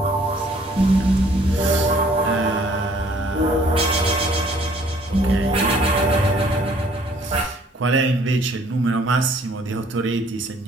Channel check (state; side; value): normal; both; correlation 0.59